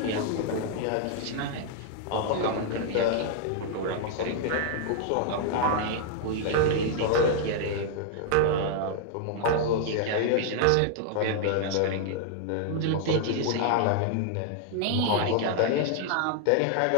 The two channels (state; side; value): different; both; correlation 0.00